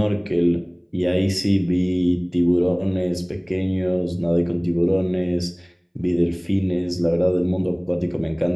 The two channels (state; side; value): identical; both; correlation 1.00